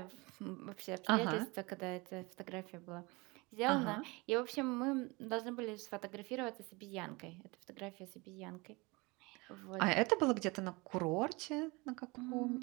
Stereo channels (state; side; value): quieter; left; 25.5 dB